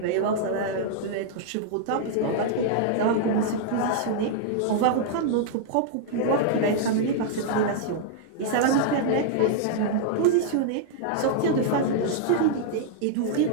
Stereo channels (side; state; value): both; different; correlation -0.01